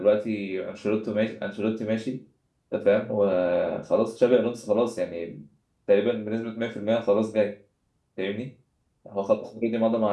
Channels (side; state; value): both; identical; correlation 1.00